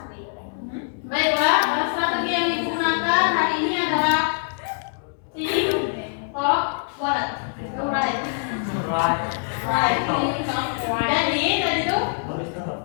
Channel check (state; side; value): silent; right; digital silence